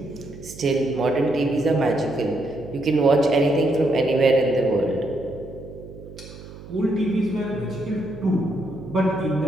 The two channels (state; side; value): noise; right; hum, 16 dB below the sound